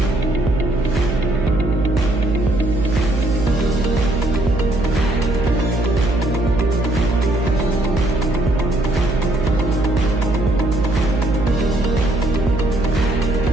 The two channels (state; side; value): noise; right; hum, 2 dB below the sound